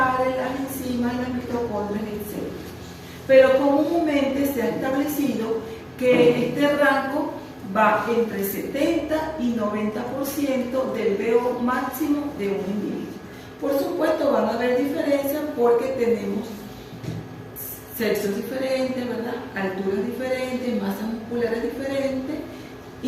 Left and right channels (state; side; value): identical; both; correlation 1.00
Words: las enzimas, las mitocondrias, etc. Pero comúnmente se ha establecido que este rango va entre 70 y 90% del VO máximo de un individuo. Por supuesto van a haber diferencias porque tenemos sexos diferentes, ¿verdad? Alturas diferentes, masas musculares diferentes,